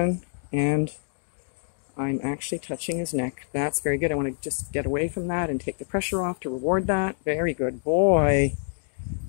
and I'm actually touching his neck. That's very good. I want to just get away from that and take the pressure off to reward that. Very good boy.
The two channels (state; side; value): silent; right; digital silence